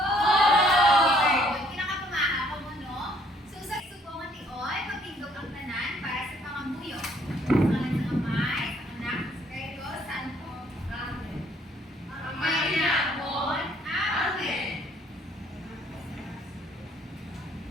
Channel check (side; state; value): both; normal; correlation 0.64